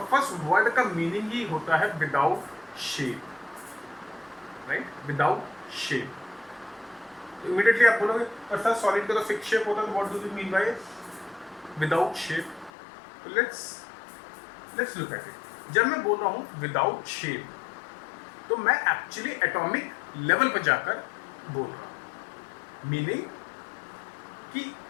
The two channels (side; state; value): right; drops out; at 12.7 s